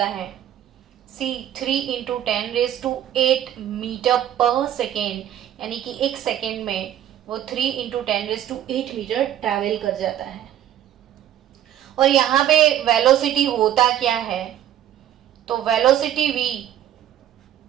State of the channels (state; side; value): quieter; left; 11.4 dB